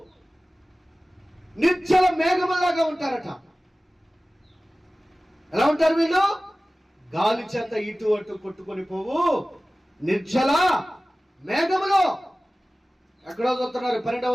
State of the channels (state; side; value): normal; both; correlation 0.97